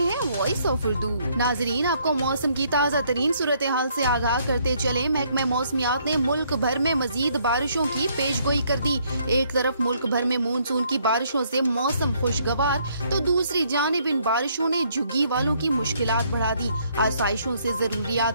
वॉइस ऑफ उर्दू। नाजरीन, आपको मौसम की ताज़ा तरीन सूरत हाल से आगाह करते चले। महकमा मौसमियात ने मुल्क भर में मजीद बारिशों की पेशगोई कर दी। एक तरफ मुल्क भर में मानसून की बारिशों से मौसम खुशगवार, तो दूसरी जानिब इन बारिशों ने झुग्गी वालों की मुश्किलात बढ़ा दी। आसाइशों से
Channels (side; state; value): both; inverted; correlation -0.68